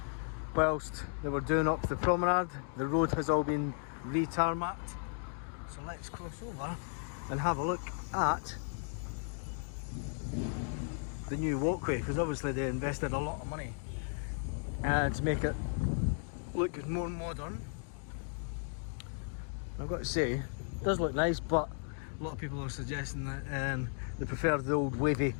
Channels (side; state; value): right; silent; 54 dB below the other